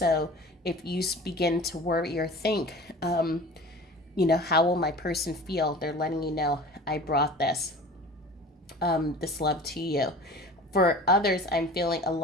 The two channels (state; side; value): normal; both; correlation 0.40